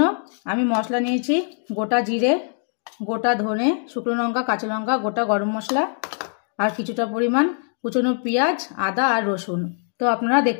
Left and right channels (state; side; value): silent; right; 56 dB below the other